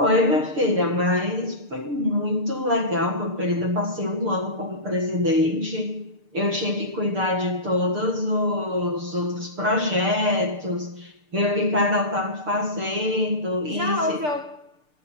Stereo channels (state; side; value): late; left; 6.7 ms